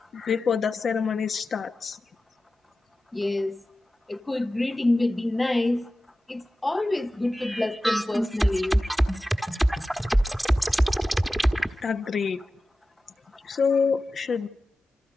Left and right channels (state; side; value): normal; both; correlation 0.95